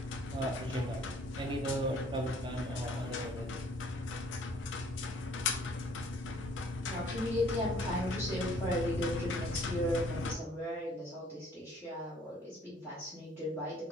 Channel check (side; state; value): both; normal; correlation 0.58